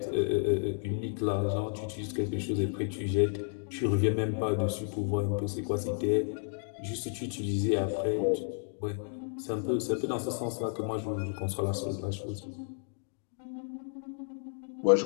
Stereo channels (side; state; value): right; silent; digital silence